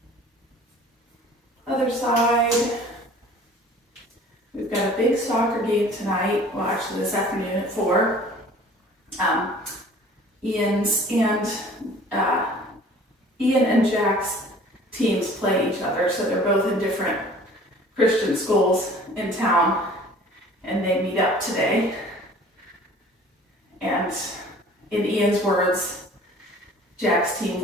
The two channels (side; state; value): both; normal; correlation 0.49